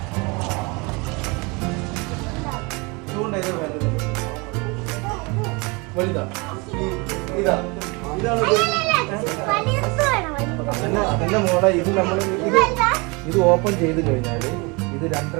അതന്നെ മോളെ. ഇത് നമ്മൾ ഇത് ഓപ്പൺ ചെയ്ത് കഴിഞ്ഞാൽ ഇത്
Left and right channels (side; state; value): left; quieter; 28.0 dB